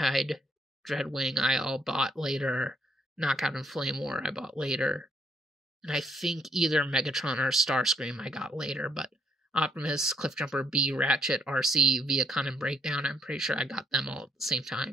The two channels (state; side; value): normal; both; correlation 0.71